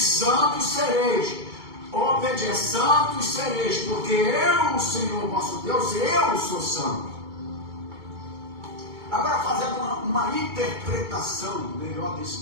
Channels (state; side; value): late; left; 2.2 ms